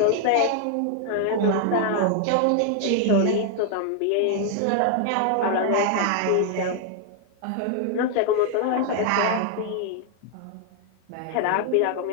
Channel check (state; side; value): different; both; correlation 0.00